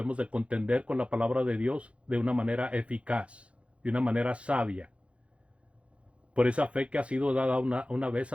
de contender con la palabra de Dios de una manera eficaz, de una manera sabia. por esa fe que ha sido dada una vez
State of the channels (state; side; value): late; left; 0.061 ms